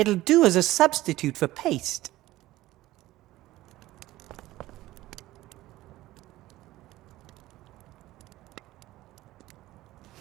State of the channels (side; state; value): left; quieter; 16.6 dB